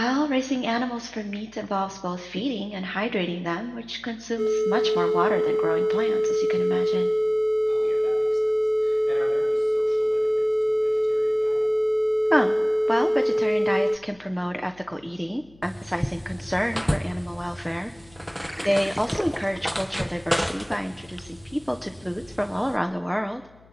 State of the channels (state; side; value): noise; left; hum, 27 dB below the sound